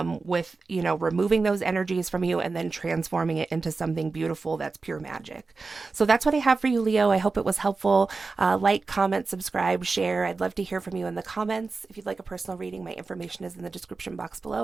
with, you know, removing those energies from you and then transforming it into something beautiful that's pure magic. So that's what I have for you, Leo. I hope it was helpful. Like, comment, subscribe, share. I'd love to hear from you in the comments. If you'd like a personal reading, my information is in the description box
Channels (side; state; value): left; quieter; 4.1 dB